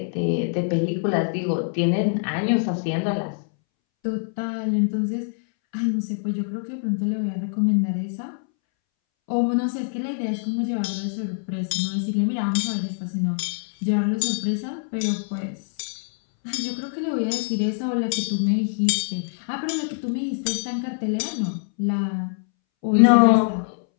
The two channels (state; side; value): silent; right; 62 dB below the other